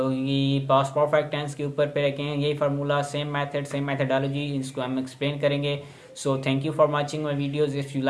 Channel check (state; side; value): identical; both; correlation 1.00